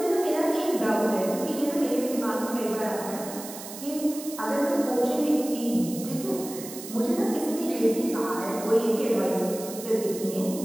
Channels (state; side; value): noise; right; hiss, 12 dB below the sound